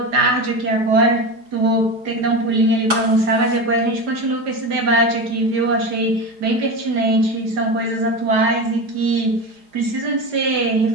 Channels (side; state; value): left; late; 4.8 ms